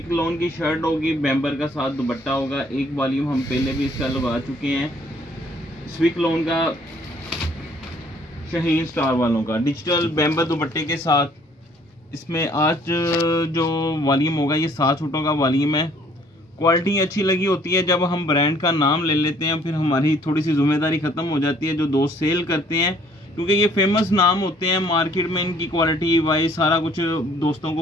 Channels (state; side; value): normal; both; correlation 0.60